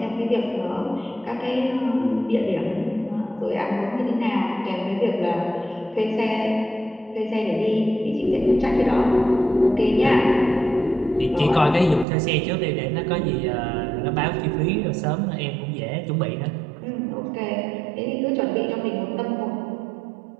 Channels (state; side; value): drops out; left; at 12.1 s